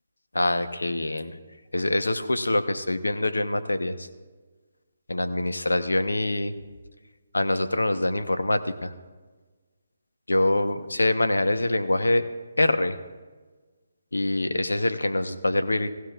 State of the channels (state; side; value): inverted; both; correlation -0.97